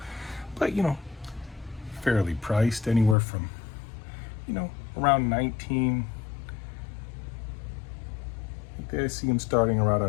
but fairly priced, anywhere from around 19. I see them starting around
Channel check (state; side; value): drops out; right; at 3.2 s